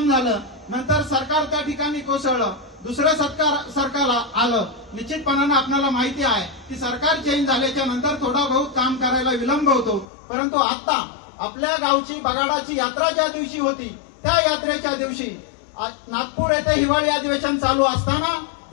झालं. नंतर सरकार त्या ठिकाणी कोसळलं. दुसरं सरकार आलं. निश्चितपणानं आपल्याला माहिती आहे की सरकार चेंज झाल्याच्या नंतर थोडा बहुत काम करायला विलंब होतो. परंतु आता आपल्या गावची बगाडाची यात्रा ज्या दिवशी होती त्या यात्रेच्या दिवशी नागपूर येथे हिवाळी अधिवेशन चालू असताना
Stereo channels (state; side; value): drops out; right; at 10.1 s